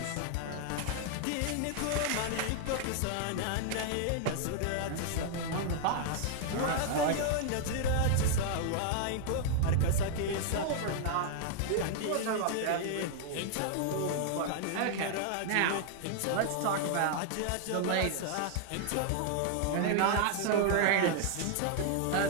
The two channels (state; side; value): different; both; correlation 0.00